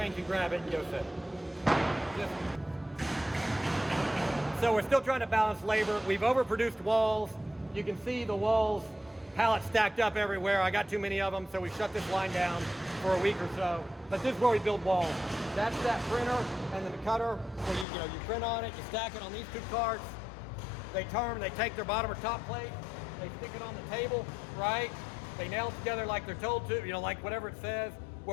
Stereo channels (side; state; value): right; drops out; at 17.9 s